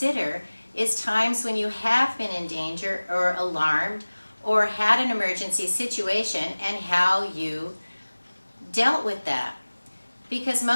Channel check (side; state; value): both; inverted; correlation -1.00